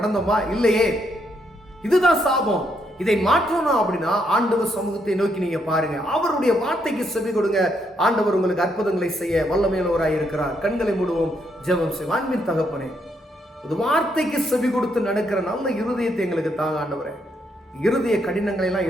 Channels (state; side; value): normal; both; correlation 0.76